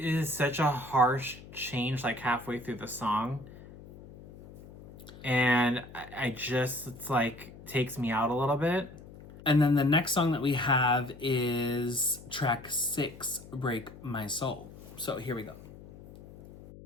such a harsh change like halfway through the song. And I just, it's like, takes me out a little bit. And then the next song that we have is track 6, Break My Soul. So here we go.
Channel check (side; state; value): left; noise; hum, 18 dB below the sound